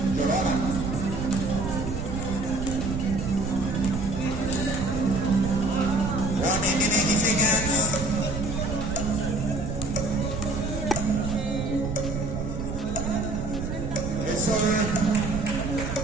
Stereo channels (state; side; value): noise; right; rumble, 5 dB below the sound